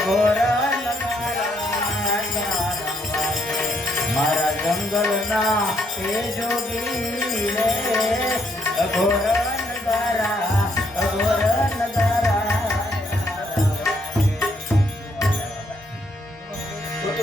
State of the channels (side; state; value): both; normal; correlation 0.72